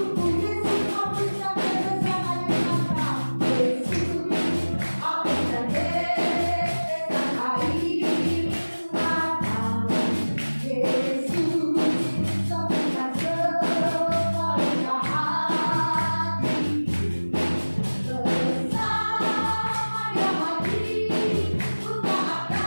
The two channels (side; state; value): both; inverted; correlation -1.00